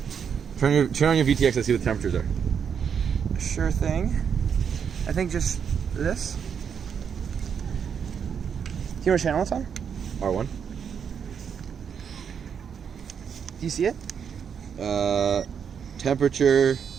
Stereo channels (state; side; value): quieter; left; 7.3 dB